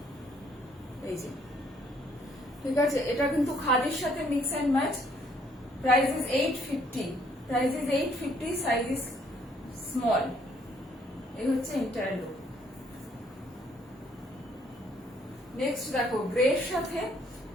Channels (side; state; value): both; normal; correlation 0.66